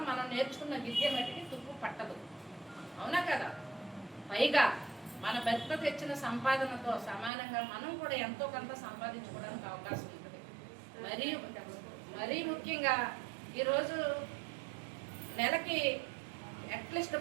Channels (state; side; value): drops out; left; at 7.3 s